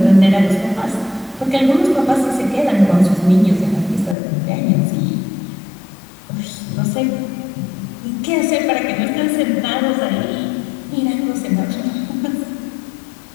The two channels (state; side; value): drops out; right; at 4.2 s